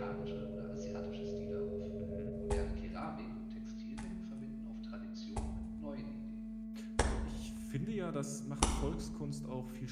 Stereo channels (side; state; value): both; identical; correlation 1.00